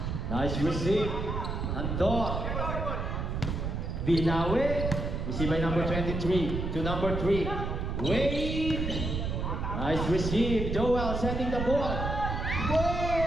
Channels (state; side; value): noise; right; rumble, 3 dB below the sound